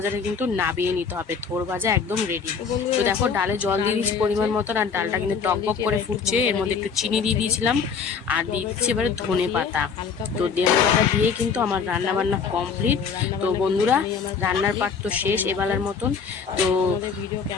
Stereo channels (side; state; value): right; quieter; 6.0 dB